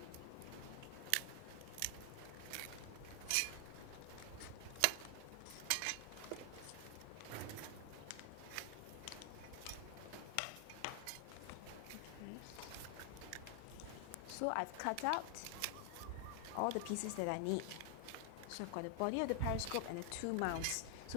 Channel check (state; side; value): different; both; correlation 0.00